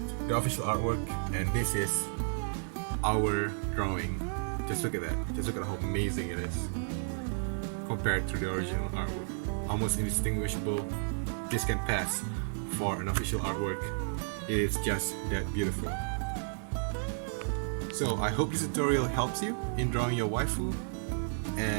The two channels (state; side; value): silent; left; digital silence